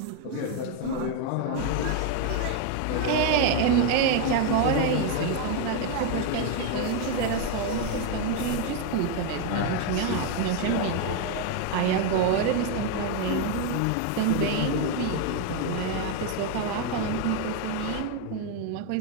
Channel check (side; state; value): both; different; correlation 0.01